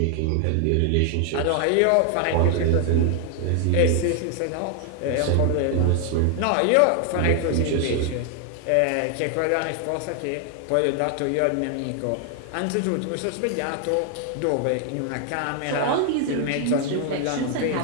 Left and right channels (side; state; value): both; different; correlation 0.00